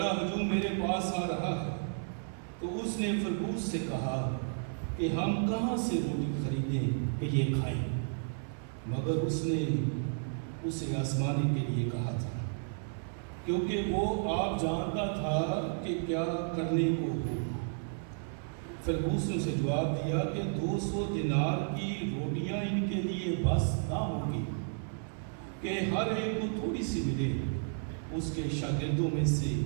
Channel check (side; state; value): left; silent; 56 dB below the other